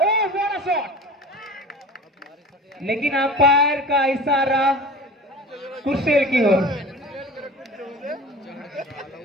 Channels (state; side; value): normal; both; correlation 0.38